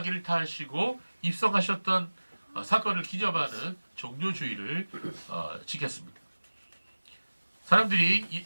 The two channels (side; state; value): both; inverted; correlation -1.00